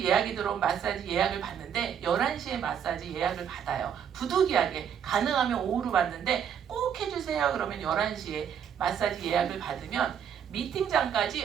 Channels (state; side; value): quieter; left; 8.4 dB